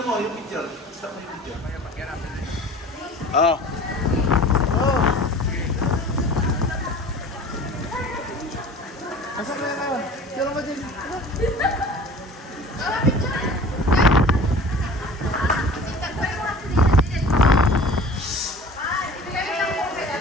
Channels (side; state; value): both; normal; correlation 0.42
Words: mo, yung picture. Stop mo yung picture. Asa ka na? Picture mo din.